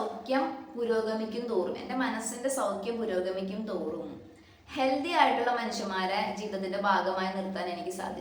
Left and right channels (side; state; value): both; identical; correlation 1.00